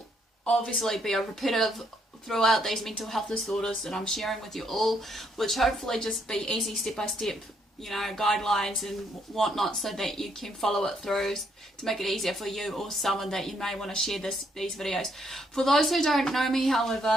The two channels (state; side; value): normal; both; correlation 0.72